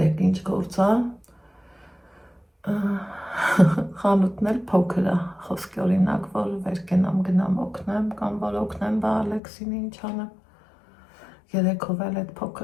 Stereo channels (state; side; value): drops out; right; at 9.4 s